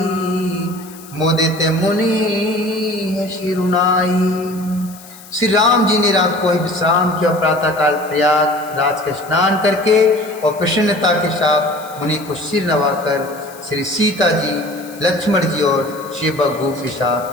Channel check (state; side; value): noise; left; hiss, 20 dB below the sound